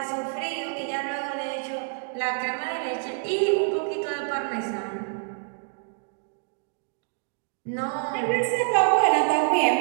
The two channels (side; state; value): left; silent; digital silence